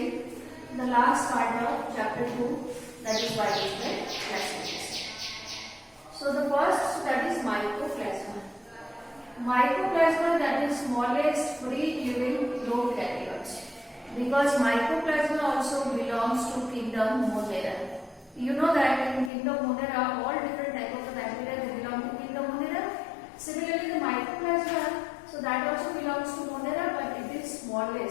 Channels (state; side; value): drops out; right; at 19.3 s